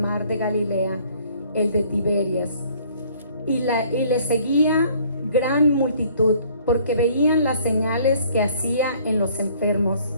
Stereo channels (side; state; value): both; inverted; correlation -0.58